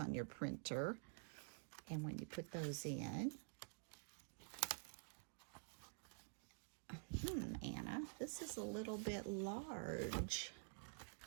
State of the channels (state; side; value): silent; left; digital silence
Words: your printer. And when you put those in, Anna, this is a little bit large